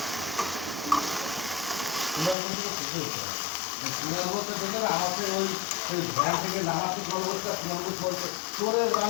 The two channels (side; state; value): right; drops out; at 2.4 s